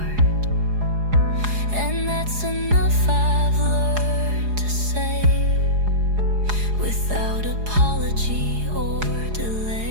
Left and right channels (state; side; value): late; left; 4.8 ms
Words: and that's enough I've learned to say without apology or